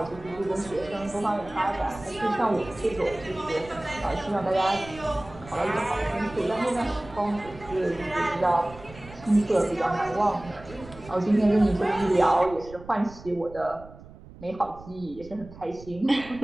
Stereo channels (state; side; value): noise; right; rumble, 18 dB below the sound